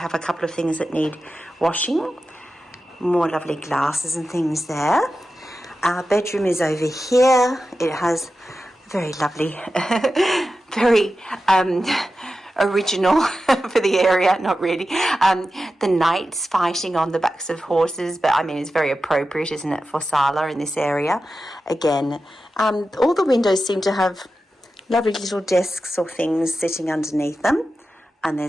a couple of things that need washing. More lovely glasses and things there. Our bedroom is over here. It has very lovely, very original for the area, not really. The knights fighting on the backs of horses, but I mean, it's very appropriate, isn't it, for Sarlat in this area? Again, all the windows seem to have lovely little desks or things sitting underneath them. And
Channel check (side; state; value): both; normal; correlation 0.92